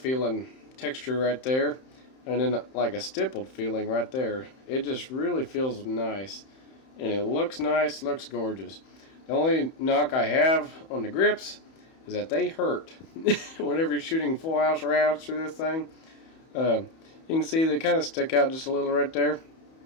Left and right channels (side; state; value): right; late; 31 ms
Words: texture right there, and then like a stippled feeling right there. It just really feels nice, and it looks nice, looks gorgeous. The only knock I have on the grips is that they hurt whenever you're shooting full house rounds through this thing. You can see they kind of stick out just a little right there.